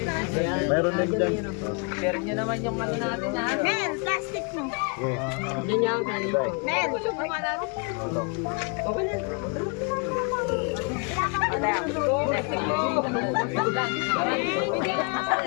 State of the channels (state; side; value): quieter; right; 34.9 dB